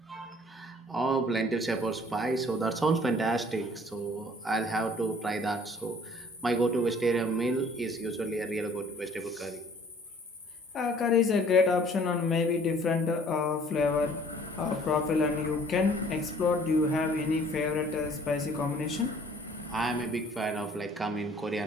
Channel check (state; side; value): normal; both; correlation 0.55